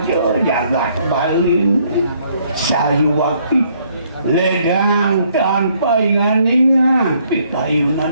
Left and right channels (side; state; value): both; inverted; correlation -0.67